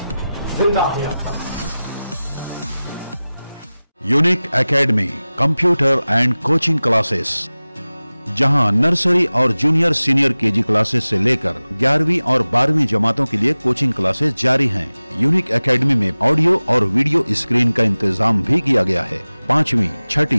जिंदा है अब तक। Unique academy computer and coaching classes, जहां नर्सरी और जूनियर सीनियर केजी क्लासेस से लेकर 11वीं और 12वीं जमातों के लिए कोचिंग क्लासेस जारी हैं। यूनिक एकेडमी में ऑडियो और वीडियो स्क्रीन का इंतजाम भी किया गया है। 5वीं,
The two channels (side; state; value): both; inverted; correlation -0.97